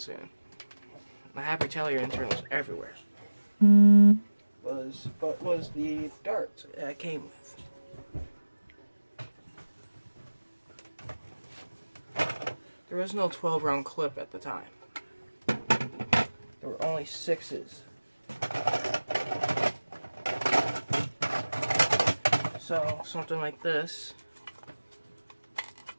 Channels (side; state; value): both; inverted; correlation -1.00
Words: I have retaliator internals everywhere. Was the darts that I came with. There was no 12-round clip at the time. There were only 6s. So something like this